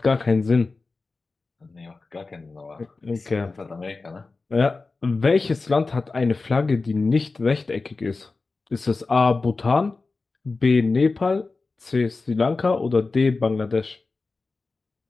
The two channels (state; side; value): quieter; right; 3.8 dB